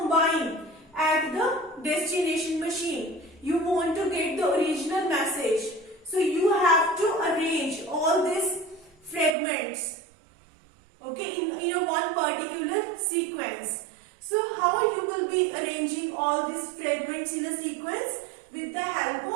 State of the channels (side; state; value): left; drops out; at 9.3 s